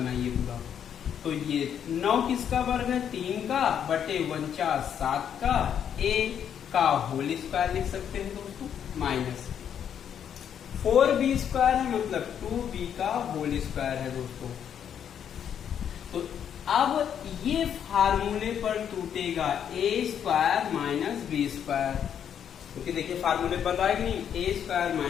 पूरा। तो ये 9 किसका वर्ग है, 3 का, बटे 49 7 का, A का होल स्क्वायर लिख सकते हैं दोस्तों, माइनस 4B² है, मतलब 2B का होल स्क्वायर है दोस्तों। तो अब ये फार्मूले पर टूटेगा A² - B², क्योंकि देखिए फार्मूले पर रहा है कि नहीं,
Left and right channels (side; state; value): right; quieter; 8.7 dB